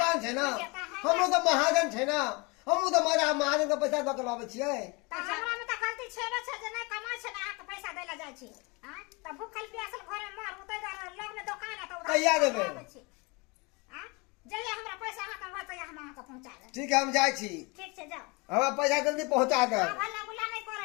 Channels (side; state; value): right; quieter; 28.0 dB